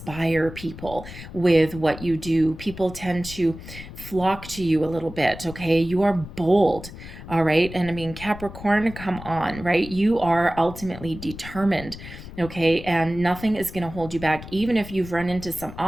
people with what you do. People tend to flock to you a little bit, okay? You are bold, all right? And I mean, Capricorn, come on, right? You are ultimately determined, okay? And nothing is going to hold you back, even if you've run into some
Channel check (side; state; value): left; noise; rumble, 13 dB below the sound